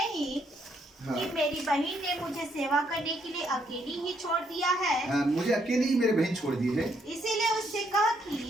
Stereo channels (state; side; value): normal; both; correlation 0.72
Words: हाँ। कि मेरी बहन ने मुझे सेवा करने के लिए अकेली ही छोड़ दिया है? मुझे अकेली ही मेरे बहन छोड़ दी है, इसीलिए उससे कह कि